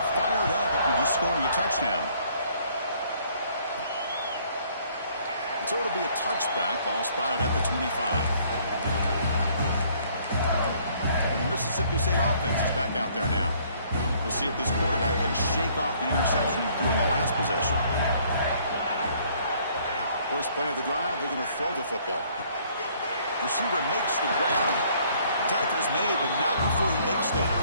fired up after just scoring a touchdown. And so it'll be a touchback. Ball spotted at the 25. And the Mississippi State offense is back out there now. We'll see if this quarterback can shake off the interception he threw in the last possession. First play of the drive, they're going to throw the football. Receiver makes the grab. Attacker's made, but not before he makes the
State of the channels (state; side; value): inverted; both; correlation -0.62